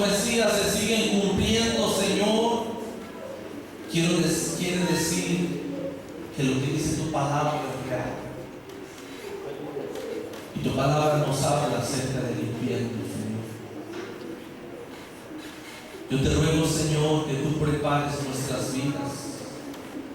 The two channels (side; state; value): both; identical; correlation 1.00